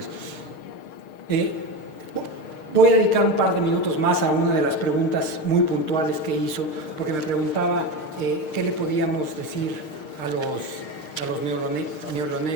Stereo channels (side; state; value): right; late; 6.5 ms